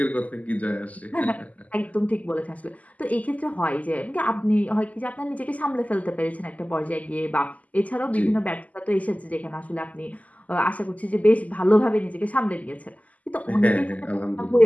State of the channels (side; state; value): right; late; 0.074 ms